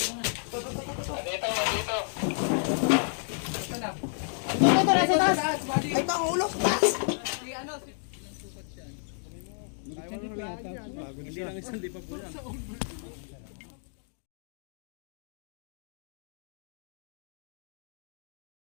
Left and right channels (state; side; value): silent; right; digital silence